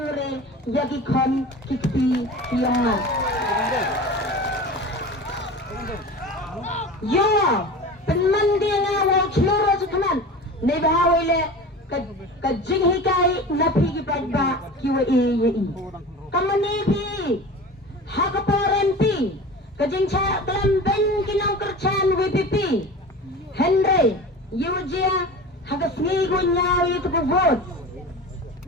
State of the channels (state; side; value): normal; both; correlation 0.34